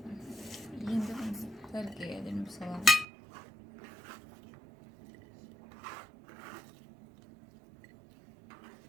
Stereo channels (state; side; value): drops out; left; at 3.1 s